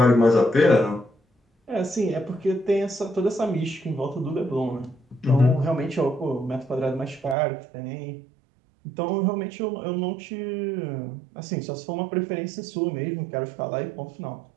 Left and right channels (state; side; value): drops out; left; at 7.4 s